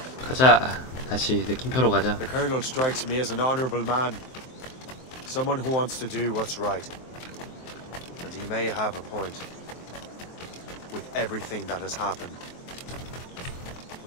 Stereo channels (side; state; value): right; late; 23 ms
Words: 가자. 다시 느낌표로 가자. The Colonel strikes me as an honorable man. Someone who wants to do what's right. And he may have a point. With everything that has happened.